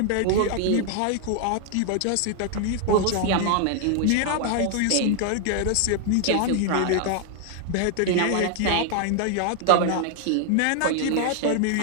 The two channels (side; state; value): both; different; correlation 0.00